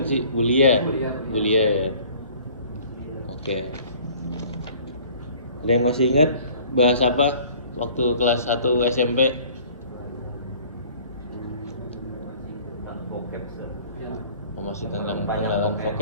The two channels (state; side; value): inverted; both; correlation -0.51